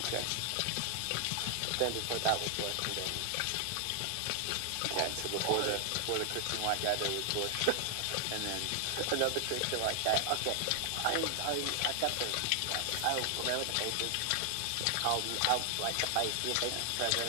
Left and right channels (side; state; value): both; different; correlation 0.00